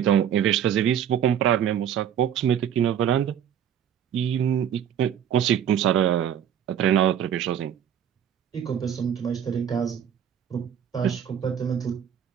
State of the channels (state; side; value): quieter; left; 9.3 dB